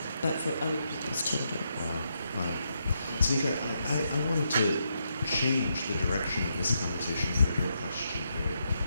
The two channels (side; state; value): both; inverted; correlation -0.81